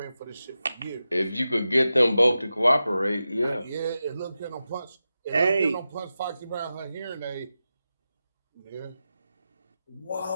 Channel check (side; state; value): both; inverted; correlation -0.92